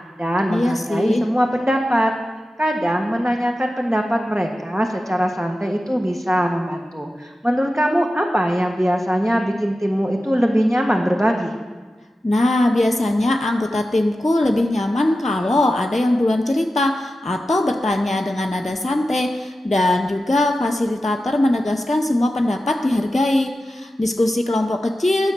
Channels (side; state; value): both; normal; correlation 0.93